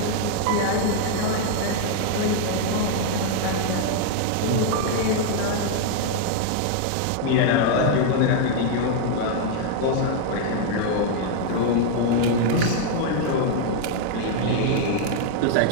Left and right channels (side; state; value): both; different; correlation 0.00